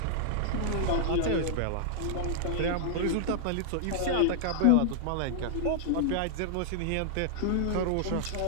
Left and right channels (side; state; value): both; different; correlation -0.01